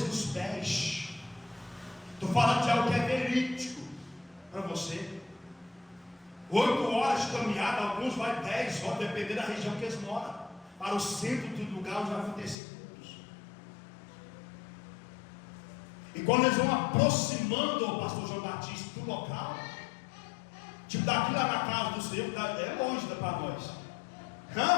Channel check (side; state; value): right; drops out; at 12.6 s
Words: pés. Estou falando de algo que é verídico para você. 8 horas de caminhada, alguns vai 10 horas, dependendo da região que eles moram, para o centro do lugar onde vai acontecer cultos. E quando eles vão aproximando o pastor João Batista do local, tipo daqui lá na casa do Senhor, é longe para nós,